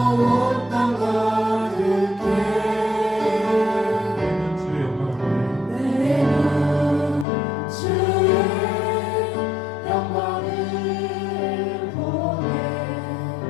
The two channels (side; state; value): right; drops out; at 7.2 s